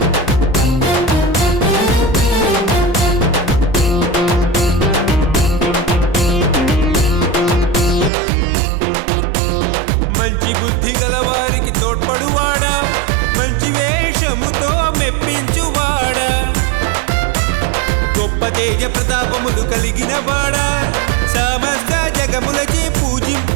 మంచి బుద్ధి గలవారికి తోడ్పడువాడా మంచి వేషముతో మెప్పించువాడా గొప్ప తేజ ప్రతాపములు కలిగిన వాడా సమస్త జగములచే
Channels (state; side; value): drops out; left; at 8.1 s